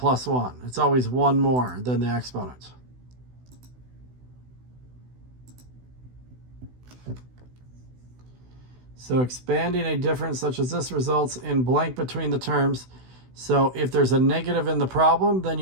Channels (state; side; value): late; left; 16 ms